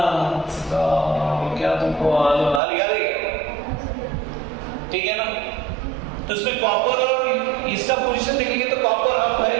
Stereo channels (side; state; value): left; drops out; at 2.6 s